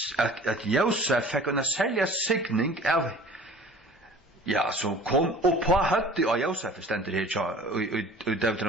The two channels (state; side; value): normal; both; correlation 0.45